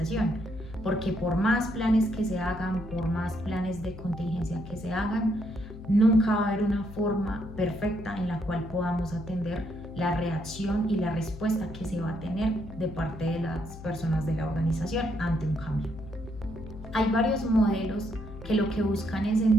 Porque por más planes que se hagan, por más planes de contingencia que se hagan, nunca va a haber una forma perfecta en la cual podamos atender la reacción y la respuesta que se va a tener de parte de las personas de la organización ante un cambio. Hay varios modelos que lo que buscan es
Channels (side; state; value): left; noise; hum, 14 dB below the sound